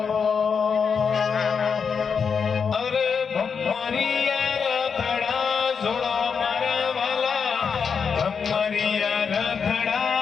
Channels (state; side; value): quieter; right; 6.1 dB